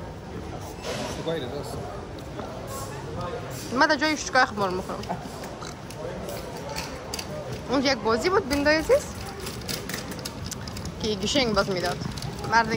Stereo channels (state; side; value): identical; both; correlation 1.00